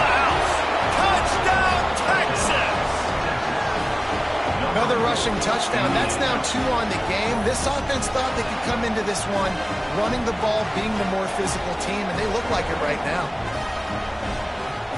house. Touchdown, Texas! Another rushing touchdown. That's now 2 on the game. This offense thought they could come into this one running the ball, being the more physical team, and they look like it right now.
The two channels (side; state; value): both; identical; correlation 1.00